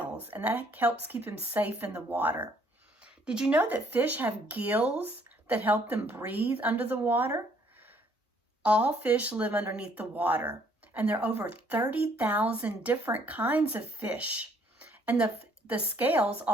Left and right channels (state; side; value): normal; both; correlation 0.64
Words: and that helps keep him safe in the water. Did you know that fish have gills that help them breathe under the water? All fish live underneath the water, and there are over 30,000 different kinds of fish. And the scales